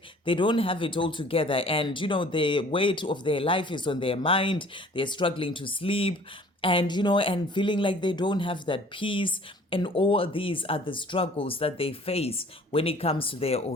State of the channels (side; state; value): both; normal; correlation 0.52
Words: they don't have it all together. And, the weight of their life is on their mind. They're struggling to sleep and and feeling like they don't have that peace. And all these are the struggles that they face when it comes to their